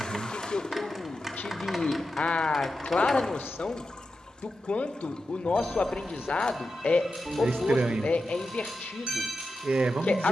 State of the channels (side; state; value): both; normal; correlation 0.90